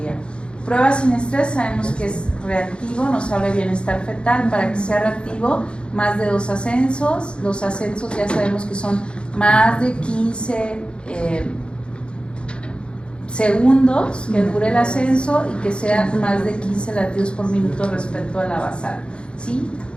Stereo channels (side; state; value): right; late; 0.055 ms